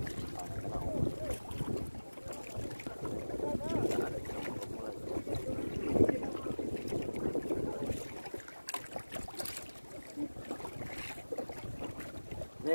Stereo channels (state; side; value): inverted; both; correlation -1.00